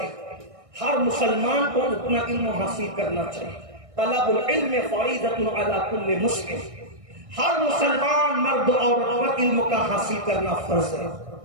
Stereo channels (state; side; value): late; left; 1.6 ms